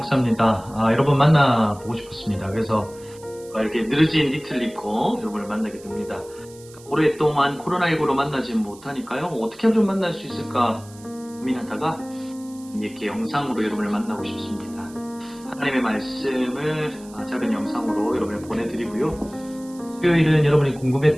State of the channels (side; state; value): right; noise; hiss, 22 dB below the sound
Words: 여러분 만나보고 싶었습니다. 그래서 이렇게 늘어진 니트를 입고 여러분을 만나게 됩니다. 오랫동안 코로나19로 만나지 못하니까요. 어떻게 하면 좀 만날 수 있을까 고민하다가 이렇게 영상으로 여러분을 만나고 싶습니다. 하나님의 말씀을 작은 영상으로 여러분을 보내드리고요. 수요일은 여러분이